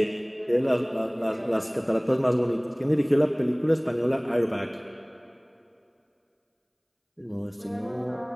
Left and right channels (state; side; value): identical; both; correlation 1.00